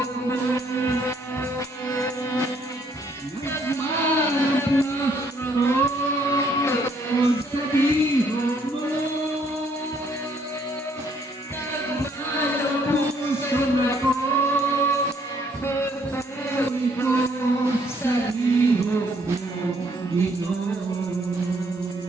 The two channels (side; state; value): both; normal; correlation 0.66